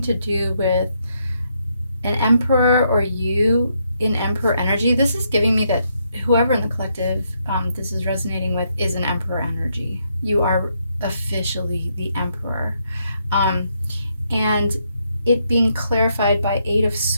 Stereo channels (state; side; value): inverted; both; correlation -0.77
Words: do with an emperor or you in emperor energy. This is giving me that whoever in the collective this is resonating with is an emperor energy. You are officially the emperor. And it being clarified by Eight of